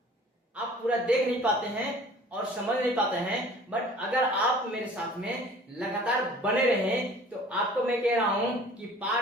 आप पूरा देख नहीं पाते हैं और समझ नहीं पाते हैं। बट अगर आप मेरे साथ में लगातार बने रहें तो आपको मैं कह रहा हूं कि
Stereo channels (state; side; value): normal; both; correlation 0.48